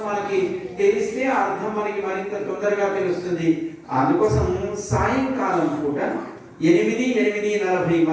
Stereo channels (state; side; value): identical; both; correlation 1.00